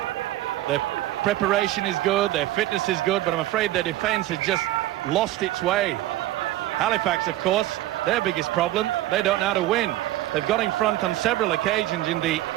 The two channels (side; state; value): left; quieter; 15.4 dB